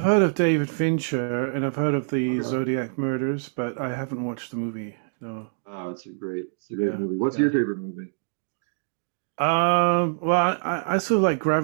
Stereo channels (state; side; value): silent; left; digital silence